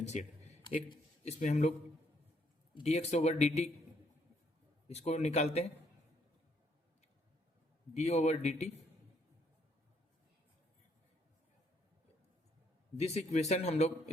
एक इसमें हम लोग dx ओवर dt इसको निकालते हैं, d over dt. This equation हम लोग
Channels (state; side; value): normal; both; correlation 0.70